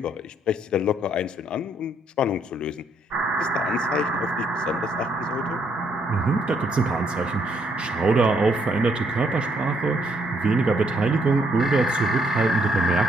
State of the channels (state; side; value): normal; both; correlation 0.71